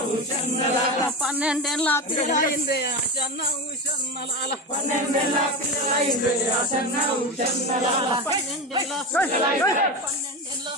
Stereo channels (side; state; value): both; normal; correlation 0.22